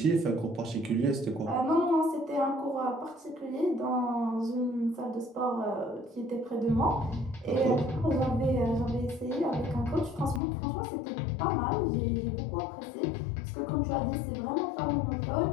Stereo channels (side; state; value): right; drops out; at 10.4 s